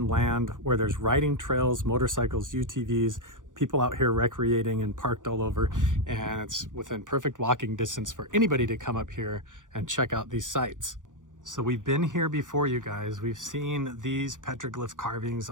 land where there's riding trails, motorcycles, UTVs, people out here recreating and parked all over, and it's within perfect walking distance for anybody to come up here and check out these sites. So we've been here before, you guys. We've seen these petroglyph carvings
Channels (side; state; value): left; late; 0.87 ms